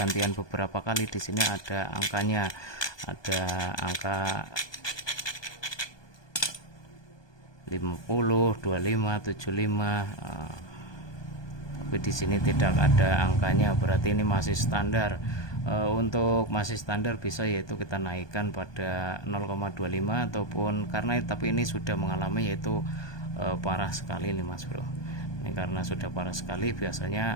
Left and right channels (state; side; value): late; right; 1.2 ms